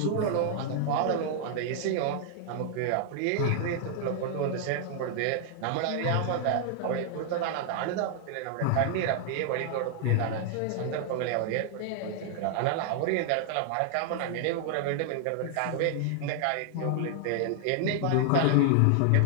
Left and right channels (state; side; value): different; both; correlation 0.00